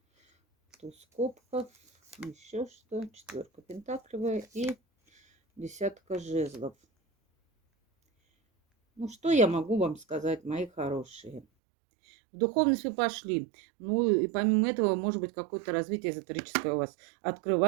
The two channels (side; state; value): left; drops out; at 11.5 s